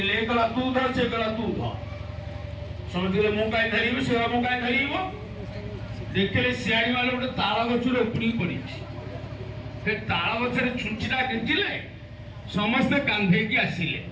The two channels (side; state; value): both; identical; correlation 1.00